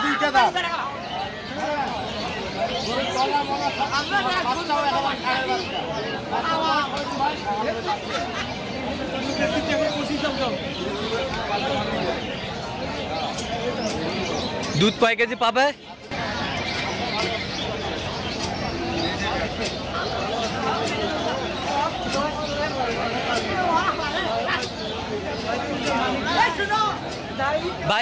2টা দাম। দুধ কয় কেজি পাবে?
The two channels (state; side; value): identical; both; correlation 1.00